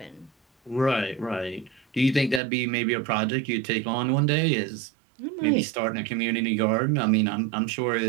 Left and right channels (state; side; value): drops out; left; at 2.4 s